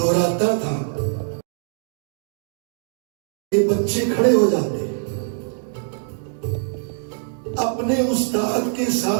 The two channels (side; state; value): left; silent; digital silence